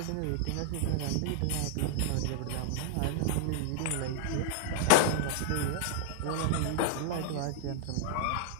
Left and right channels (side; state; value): both; different; correlation -0.01